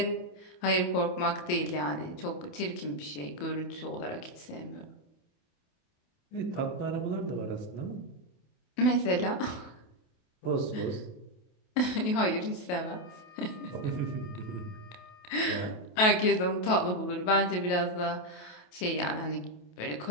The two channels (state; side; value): late; right; 28 ms